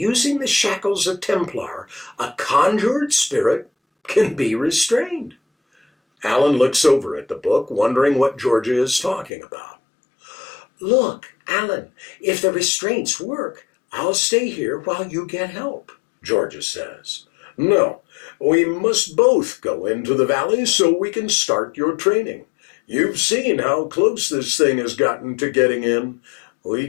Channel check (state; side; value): drops out; right; at 9.3 s